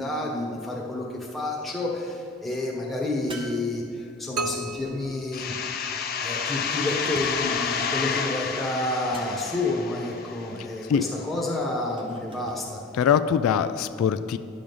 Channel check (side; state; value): right; quieter; 3.8 dB